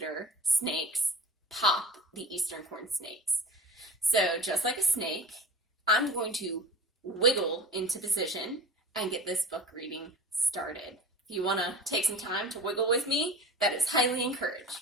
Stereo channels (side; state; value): both; normal; correlation 0.37